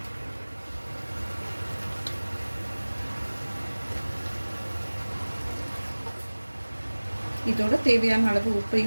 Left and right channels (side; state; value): both; inverted; correlation -1.00